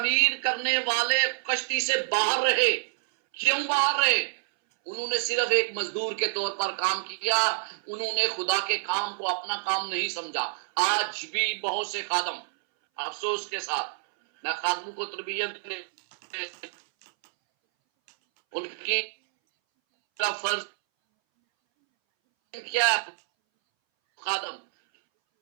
کرنے والے کشتی سے باہر رہے. کیوں باہر رہے؟ انہوں نے صرف ایک مزدور کے طور پر کام کیا، انہوں نے خدا کے کام کو اپنا کام نہیں سمجھا. آج بھی بہت سے خادم، افسوس کے ساتھ میں خادموں کو تربیت ان کی فرض کیا خادم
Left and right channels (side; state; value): left; silent; 60 dB below the other